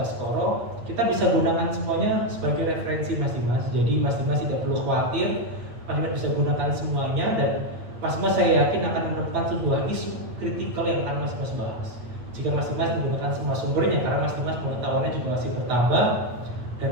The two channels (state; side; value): late; left; 8.9 ms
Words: kita bisa gunakan semuanya sebagai referensi Mas Dimas. Jadi Mas Dimas tidak perlu khawatir, Mas Dimas bisa gunakan semuanya, dan Mas Dimas saya yakin akan menemukan sebuah isu kritikal yang akan Mas Dimas bahas. Jika Mas Dimas menggunakan semua sumbernya, karena Mas Dimas pengetahuannya juga masih bertambah dan